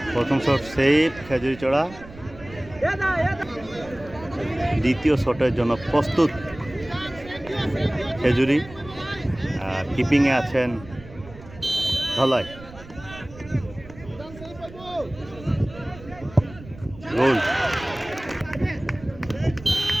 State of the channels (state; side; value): noise; right; rumble, 18 dB below the sound